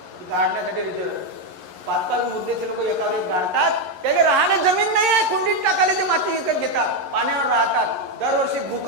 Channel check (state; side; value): late; left; 11 ms